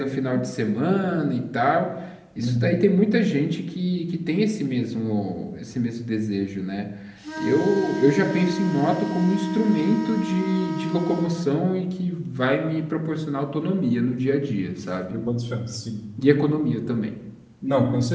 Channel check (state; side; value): identical; both; correlation 1.00